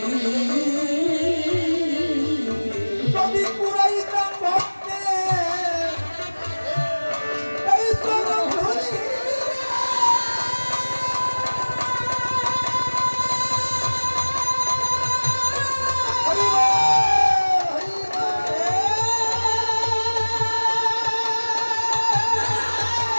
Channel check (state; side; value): inverted; both; correlation -1.00